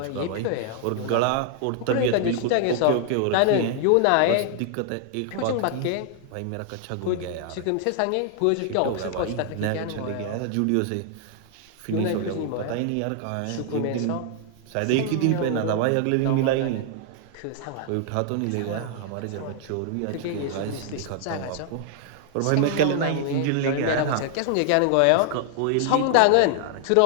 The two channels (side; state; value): both; different; correlation 0.00